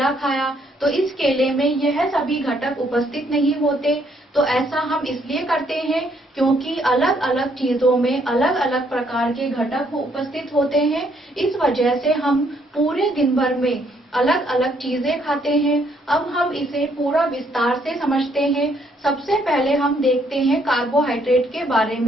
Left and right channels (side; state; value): both; normal; correlation 0.69